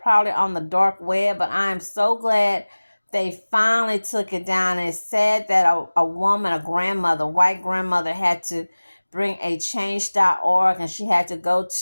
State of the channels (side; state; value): both; inverted; correlation -1.00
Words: on the dark web, but I am so glad they finally took it down. And it said that a woman, a grandmother, white grandmother, had to bring a change.org, and she had to go